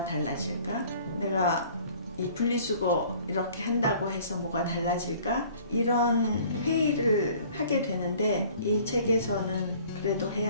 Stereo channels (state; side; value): inverted; both; correlation -0.52